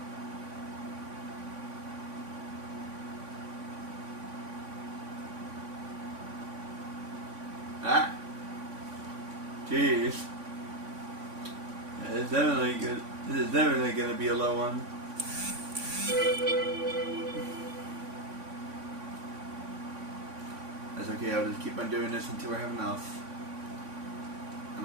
Ah, jeez. It's definitely good. This is definitely gonna be a low one. That's okay. I'll just keep on doing this until I have enough. I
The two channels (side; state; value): left; late; 3.5 ms